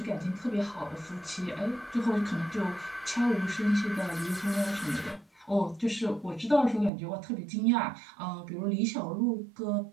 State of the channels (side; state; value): left; drops out; at 6.9 s